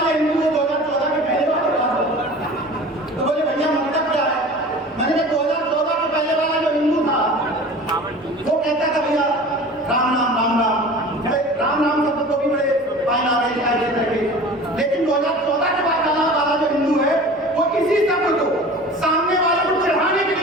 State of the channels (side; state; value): both; normal; correlation 0.40